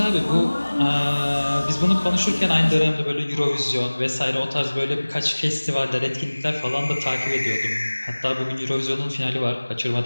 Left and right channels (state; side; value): inverted; both; correlation -1.00